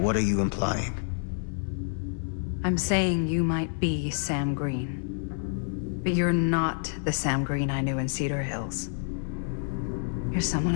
are you implying? I'm saying you might be Sam Green. But you're not the Sam Green I knew in Cedar Hills. You're someone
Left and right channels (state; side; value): silent; right; 59 dB below the other